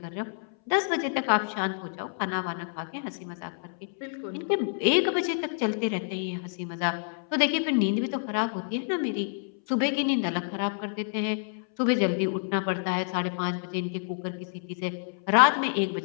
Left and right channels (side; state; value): right; silent; 59 dB below the other